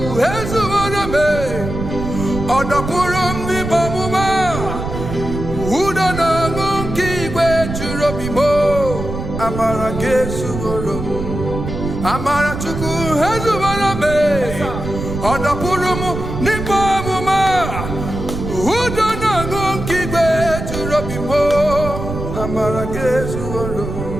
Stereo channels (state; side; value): noise; right; rumble, 6 dB below the sound